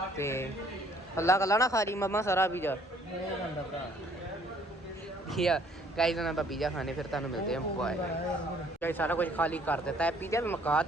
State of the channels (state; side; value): normal; both; correlation 0.61